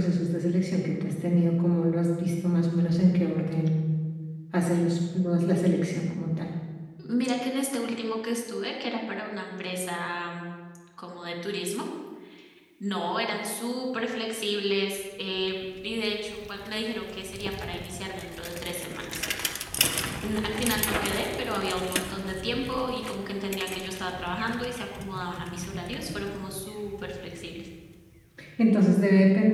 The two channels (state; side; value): identical; both; correlation 1.00